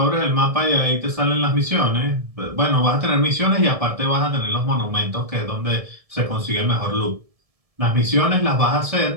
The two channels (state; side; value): late; left; 1.7 ms